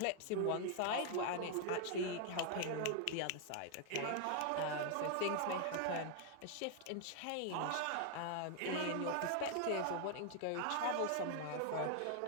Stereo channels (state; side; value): different; both; correlation 0.00